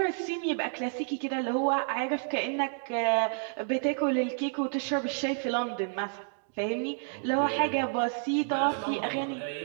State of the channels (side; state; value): left; silent; 58 dB below the other